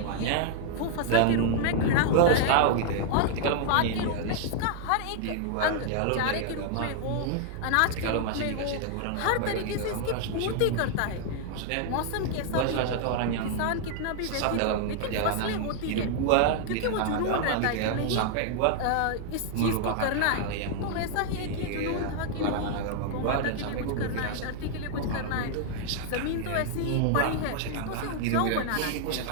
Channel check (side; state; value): both; different; correlation -0.01